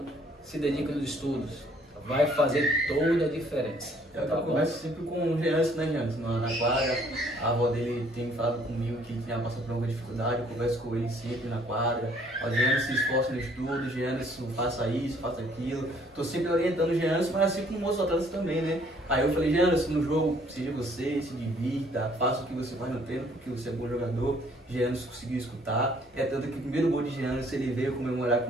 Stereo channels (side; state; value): both; normal; correlation 0.61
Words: se dediquem nos estudos. Vai fazer toda a diferença. Eu converso sempre com o Jeanson, né, Jeanson? Na quadra, a avó dele tem falado comigo que tinha passado por alguma dificuldade, eu converso com ele sempre na quadra. O Jeanson se esforça no estudo, o Jeanson faça isso, faça aquilo. Tô sempre orientando o Jeanson, mas assim como outros atletas também, né? Aí eu falei, Jeanson, no jogo, seja você, se divirta, faça o que você faz no treino, porque você é bom jogador. Jeanson conseguiu escutar. É tanto que o primeiro gol de Jeanson, ele veio comemorar